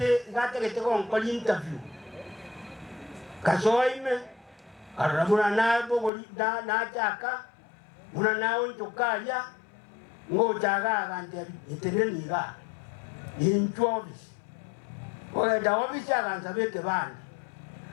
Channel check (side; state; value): right; drops out; at 6.1 s